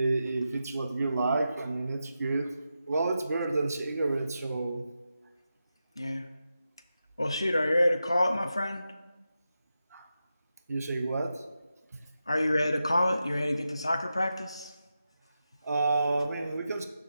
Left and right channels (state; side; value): inverted; both; correlation -0.89